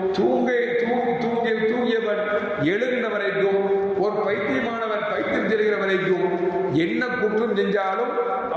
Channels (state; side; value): identical; both; correlation 1.00